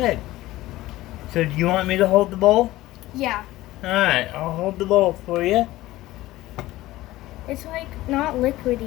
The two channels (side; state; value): right; quieter; 17.0 dB